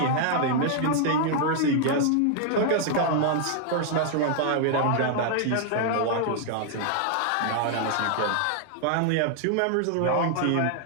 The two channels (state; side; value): different; both; correlation 0.00